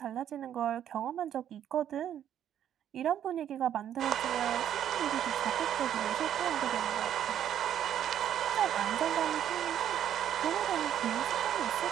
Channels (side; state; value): left; quieter; 10.2 dB